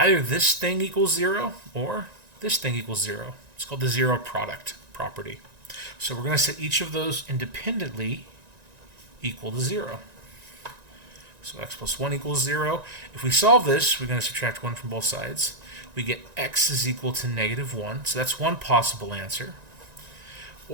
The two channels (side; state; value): left; late; 1.9 ms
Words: this thing equals 0 or this thing equals 0. It's called the zero product property. So we're going to set each of those independently equal to 0. So x plus 1 equals 0. If we solve this, we're going to subtract 1 from both sides. We get x is equal to negative 1. So that's one possible answer.